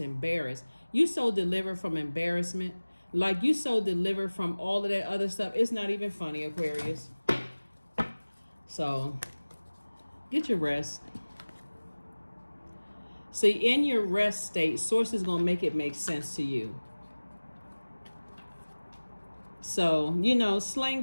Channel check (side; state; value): both; inverted; correlation -1.00